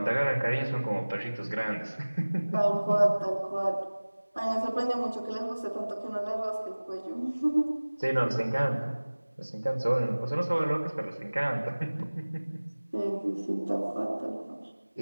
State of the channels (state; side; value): inverted; both; correlation -1.00